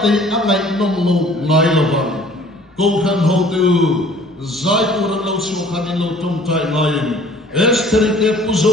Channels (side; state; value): both; normal; correlation 0.52